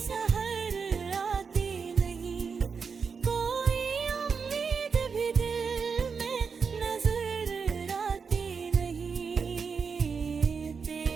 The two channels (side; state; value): left; quieter; 5.6 dB